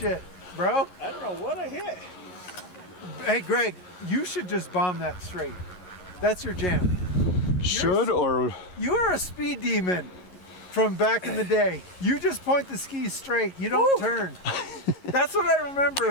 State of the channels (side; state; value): right; late; 11 ms